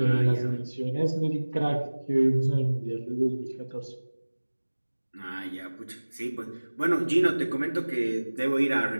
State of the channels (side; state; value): both; inverted; correlation -1.00